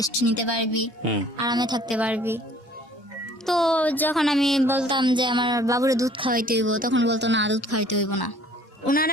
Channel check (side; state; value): both; normal; correlation 0.54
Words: নিতে পারবি, হুম আরামে থাকতে পারবি। তো যখন আমি বলতাম যে আমার বাবুরে দুধ খাওয়াইতে হইব, তখন বলতো না দুধ খাওয়াইতে হইব না।